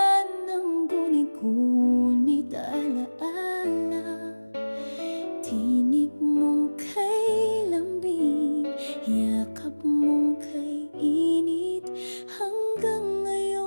ng guni-gunit alaala. Tinig mong kay lambing, yakap mong kay init. Hanggang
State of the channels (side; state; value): both; inverted; correlation -1.00